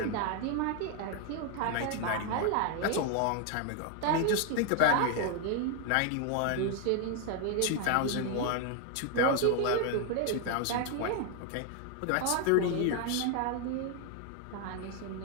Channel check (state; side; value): different; both; correlation 0.01